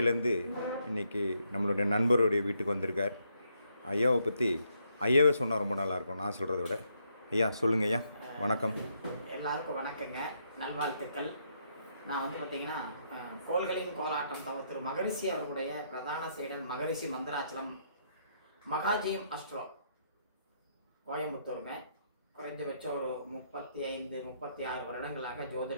இன்றைக்கி நம்மளுடைய நண்பருடைய வீட்டுக்கு வந்திருக்கார். ஐயாவை பற்றி ஐயாவே சொன்னால் ரொம்ப நல்லாயிருக்கும் நான் சொல்கிறத விட. ஐயா சொல்லுங்கள் ஐயா. வணக்கம். எல்லாருக்கும் வணக்கங்க, நல்வாழ்த்துக்கள். நான் வந்து பார்த்திங்கன்னா கோள்களின் கோலாட்டம் திரு மகரிஷி அவர்களுடைய பிரதான செயலர் மகரிஷி மந்திராச்சலம் மகாஜியம் அஸ்ட்ரோ கோயம்புத்தூருங்க. குறைஞ்சபட்சம் ஒரு 35-36 வருடங்களாக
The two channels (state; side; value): inverted; both; correlation -0.75